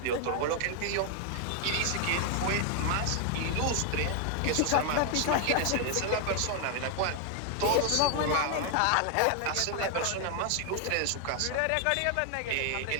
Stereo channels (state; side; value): different; both; correlation 0.00